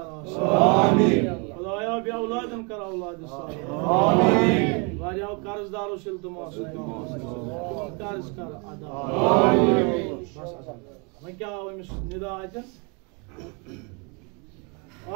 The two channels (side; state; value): left; quieter; 33.3 dB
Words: खुदाया बे औलादन कर औलाद वारियाव कर्जदारों से इल्तमास कर्ज कर अदा वह क्या निदा अतन